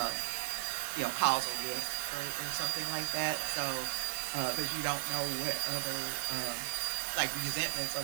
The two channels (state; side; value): silent; left; 54 dB below the other